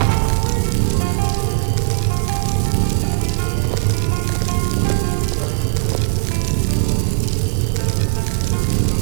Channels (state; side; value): silent; left; digital silence